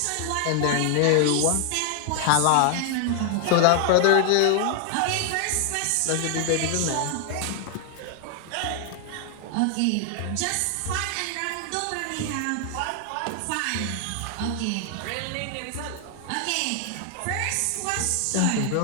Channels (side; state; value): both; different; correlation 0.00